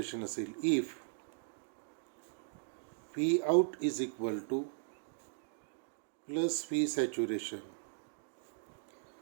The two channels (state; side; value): silent; left; digital silence